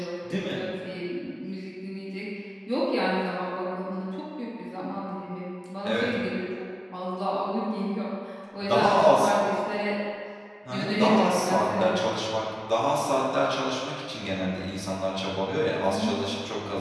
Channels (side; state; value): both; identical; correlation 1.00